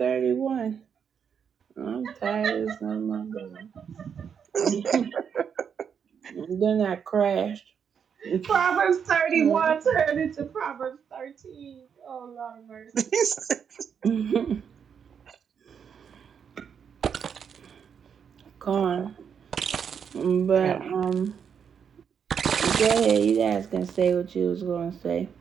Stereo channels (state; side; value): quieter; left; 7.3 dB